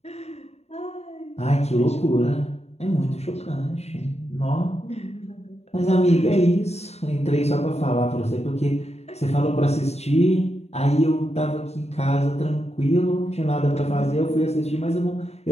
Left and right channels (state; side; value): late; right; 0.31 ms